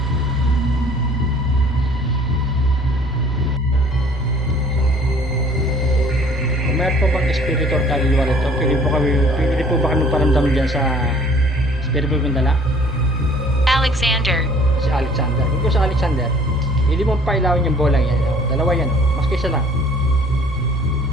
Kung mayroon po bang espiritu or kaluluwa rito, pwede po ba kami paramdam dyan sa espiritu kong dala? Alexander. Si Alexander. Kung sa Alexander, hindi mo pailawin yung bolang yan. Oh, dalawa yan. Oh. Mas kaysa lang.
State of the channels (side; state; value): both; normal; correlation 0.54